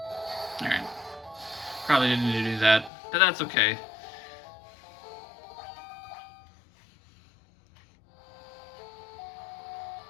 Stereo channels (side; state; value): right; drops out; at 2.9 s